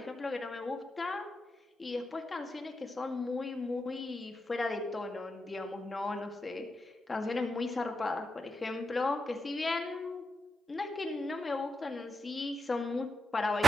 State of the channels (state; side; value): normal; both; correlation 0.86